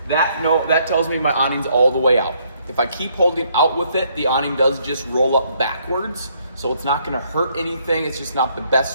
That tells me my awning's all the way out. If I keep holding out with it, the awning does just roll up backwards. So it's not gonna hurt anything. It's just not the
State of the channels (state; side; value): inverted; both; correlation -0.69